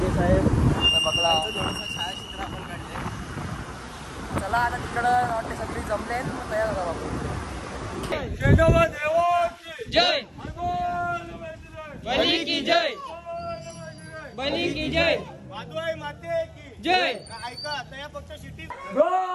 साहेब बघला. चला आता तिकडं वाटते सगळी जमले तयार झाला बाबू. जय बली की जय. बली की जय. वादवाई माते की जय. ऐका आता या पक्ष शिटी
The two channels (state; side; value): identical; both; correlation 1.00